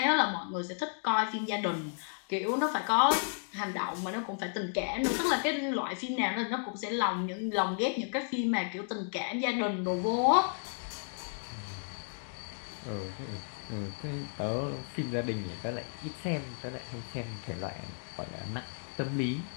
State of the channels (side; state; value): right; silent; 56 dB below the other